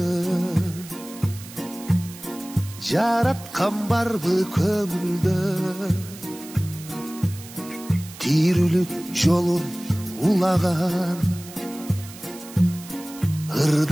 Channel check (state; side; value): noise; right; hiss, 16 dB below the sound